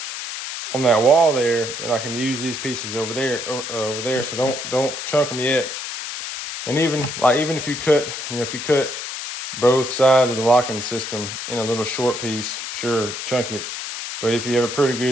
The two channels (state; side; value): noise; left; hiss, 6 dB below the sound